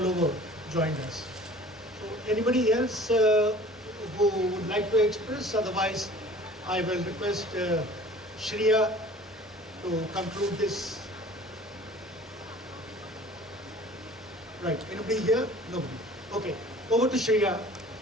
over joined us. So anybody else who would like to express? Otherwise, I will request Shreya to conclude this. Right, anybody here? Nobody. Okay, over to Shreya.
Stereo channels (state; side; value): normal; both; correlation 0.47